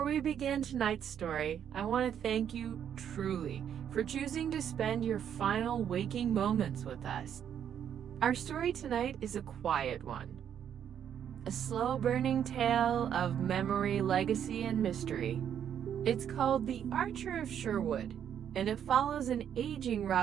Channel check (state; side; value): quieter; left; 9.1 dB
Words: we begin tonight's story, I want to thank you truly for choosing to spend your final waking moments with us. Our story tonight is a quiet one. A slow-burning tale of memory, legacy, and mystery. It's called The Archer of Sherwood, and it follows an aging